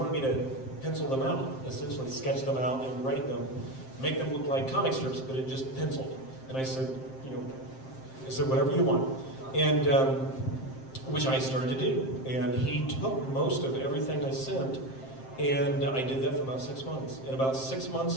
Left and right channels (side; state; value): right; late; 7.6 ms